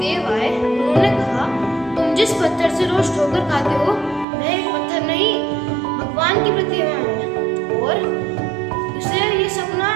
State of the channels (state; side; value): drops out; left; at 4.2 s